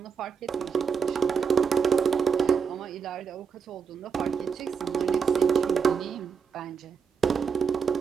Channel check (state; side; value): quieter; left; 6.3 dB